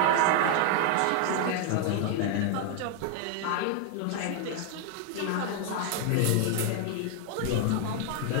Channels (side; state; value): both; different; correlation 0.00